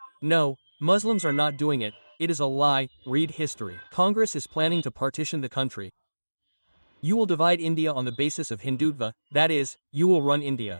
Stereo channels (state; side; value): inverted; both; correlation -1.00